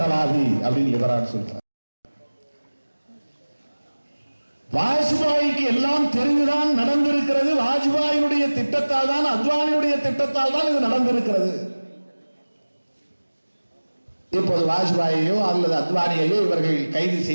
அப்படின்னு லிபரான் சொல்கிறார். வாஜ்பாய்க்கு எல்லாம் தெரிந்துதான் நடந்திருக்கிறது. வாஜ்பாயினுடைய திட்டத்தால் தான், அத்வானியுடைய திட்டத்தால் தான் இது நடந்திருக்கிறது. இப்போது வாஜ்பாயையோ அல்லது அத்வானியையோ இவர்கள் கைது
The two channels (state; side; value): inverted; both; correlation -1.00